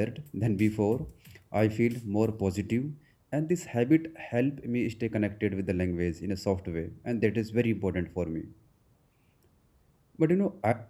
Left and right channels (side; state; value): both; identical; correlation 1.00